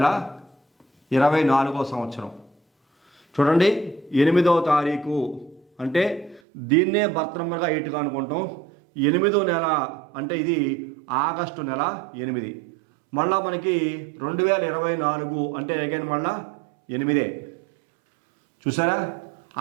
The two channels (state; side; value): drops out; left; at 6.4 s